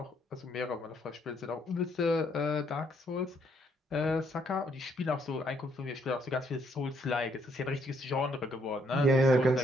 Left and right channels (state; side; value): normal; both; correlation 0.70